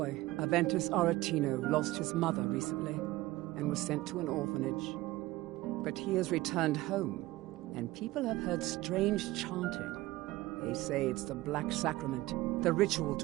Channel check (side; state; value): left; quieter; 18.3 dB